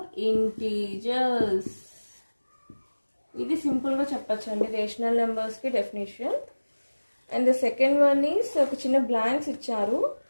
integers. ఇది సింపుల్గా చెప్పచ్చండి rational నెంబర్స్కి definition. And the second one is ఒక చిన్న blanks ఇచ్చారు.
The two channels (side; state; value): both; inverted; correlation -1.00